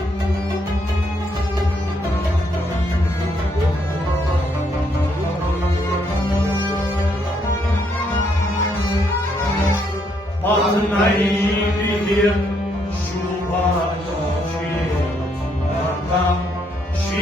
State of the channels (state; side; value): normal; both; correlation 0.73